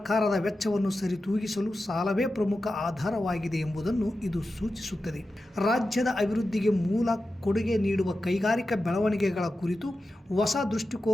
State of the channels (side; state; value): both; normal; correlation 0.92